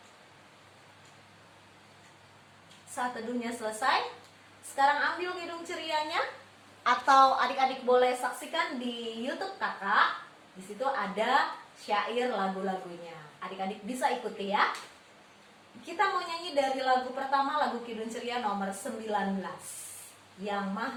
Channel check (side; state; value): both; identical; correlation 1.00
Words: Saat teduhnya selesai. Sekarang ambil hidung cerianya, atau adik-adik boleh saksikan di YouTube Kakak. Di situ ada syair lagu-lagunya. Adik-adik bisa ikuti ya. Kita mau nyanyi dari lagu pertama, lagu Kidung Ceria nomor 19, Yang